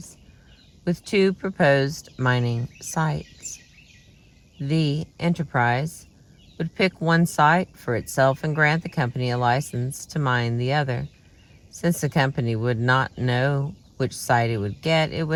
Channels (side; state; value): both; identical; correlation 1.00